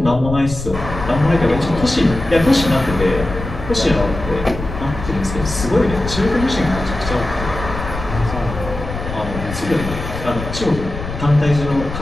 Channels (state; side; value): noise; left; rumble, 8 dB below the sound